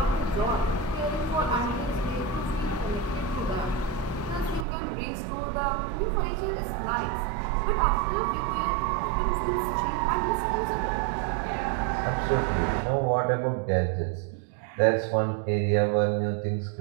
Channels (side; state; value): left; drops out; at 4.7 s